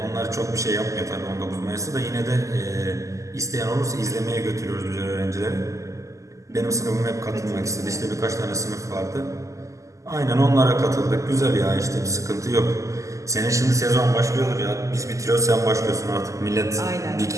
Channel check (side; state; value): left; late; 0.16 ms